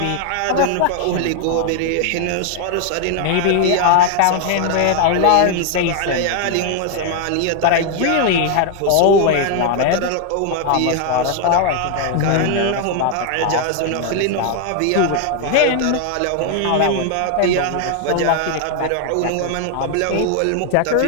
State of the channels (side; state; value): both; different; correlation 0.00